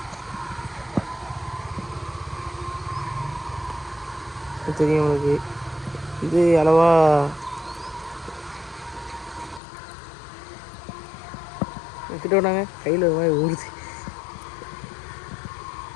தெரியும் உங்களுக்கு இது அளவா கிட்ட விட்டாங்க. கையில் ஒரு மாதிரி ஊறுது.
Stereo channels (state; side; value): drops out; right; at 9.6 s